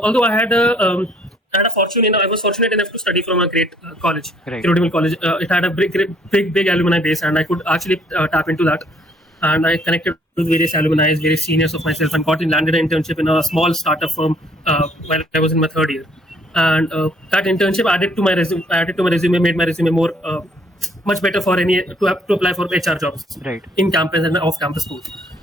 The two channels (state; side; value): normal; both; correlation 0.62